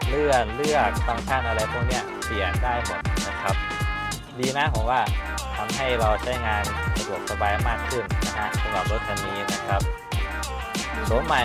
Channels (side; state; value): both; identical; correlation 1.00